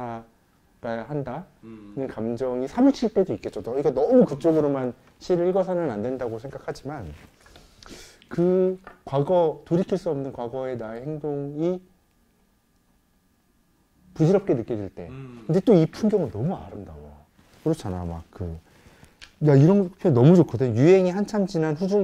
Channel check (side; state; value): both; identical; correlation 1.00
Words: 한다는 감정이 사무칠 때도 있겠죠. 그러니까 너무 그쪽으로만 시를 읽어서는 안 된다고 생각하지만 그 과거, 돌이킬 수 없는 과거의 나의 행동이 부질없게 느껴질 때. 근데 또 이 풍경은 너무 아름다워. 그렇잖아. 막 야, 이런 표현 너무 좋거든. 유행이 한참 지난